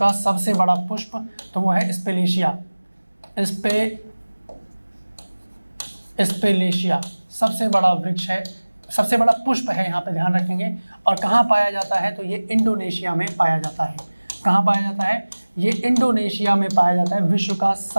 सबसे बड़ा पुष्प तो वो है स्पेलेशिया। सबसे बड़ा वृक्ष है, सबसे बड़ा पुष्प है, यहाँ पे ध्यान रखेंगे। और कहाँ पाया जाता है, तो ये इंडोनेशिया में पाया जाता है। कहाँ पाया जाता है, ये इंडोनेशिया में पाया जाता है, विश्व का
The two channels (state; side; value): inverted; both; correlation -1.00